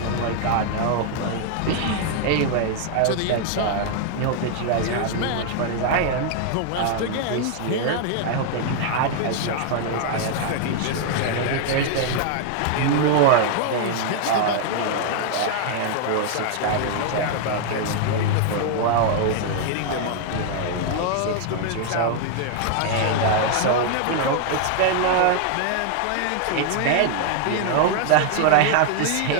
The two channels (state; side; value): different; both; correlation 0.00